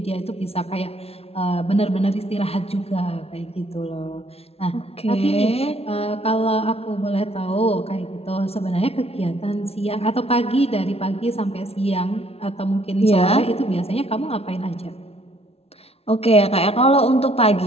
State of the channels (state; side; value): late; right; 0.30 ms